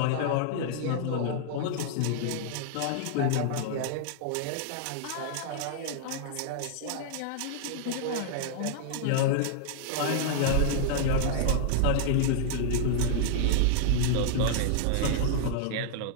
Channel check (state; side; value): different; both; correlation -0.01